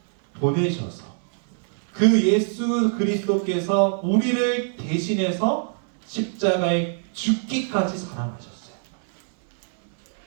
보내셔서 그 예수 그리스도께서 우리를 대신해서 십자가에 죽기까지 사랑하셨어요.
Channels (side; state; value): left; silent; 63 dB below the other